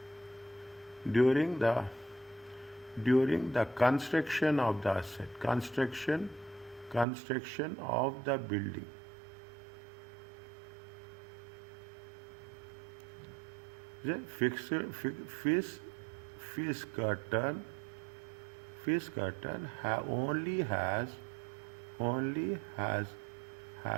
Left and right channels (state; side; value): drops out; left; at 7.1 s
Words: construction of the asset, construction of the building. The Fiskerton only has